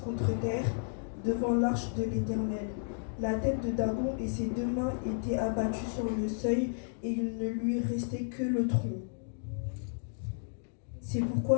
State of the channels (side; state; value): right; silent; digital silence